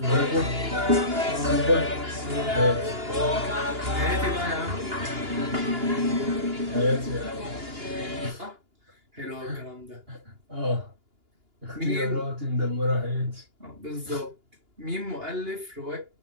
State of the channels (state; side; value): late; left; 2.9 ms